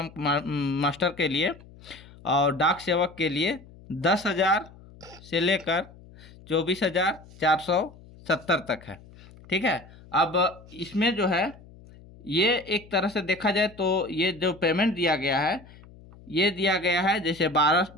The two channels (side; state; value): left; noise; hum, 22 dB below the sound